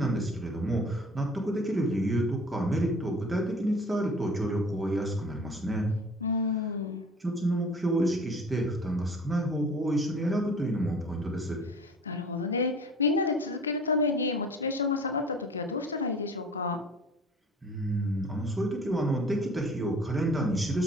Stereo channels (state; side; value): normal; both; correlation 0.46